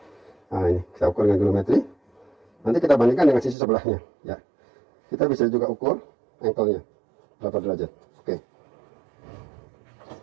nah ini kita ukur dengan goniometri. Nanti kita bandingkan dengan sisi sebelahnya. Ya, kita bisa juga ukur ankle-nya berapa derajat. Oke.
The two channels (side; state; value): left; drops out; at 3.6 s